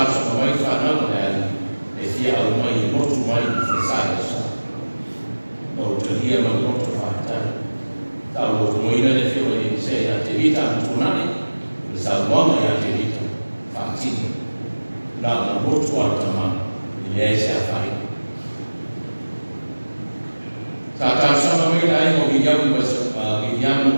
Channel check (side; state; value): both; inverted; correlation -1.00